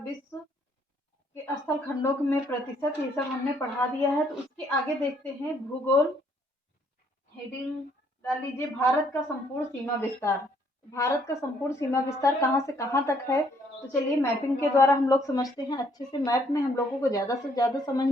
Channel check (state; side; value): normal; both; correlation 0.67